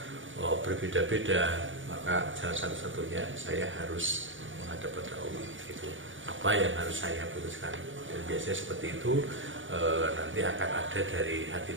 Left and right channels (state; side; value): late; left; 0.56 ms